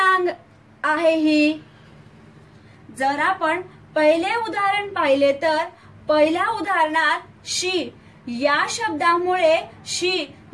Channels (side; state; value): both; identical; correlation 1.00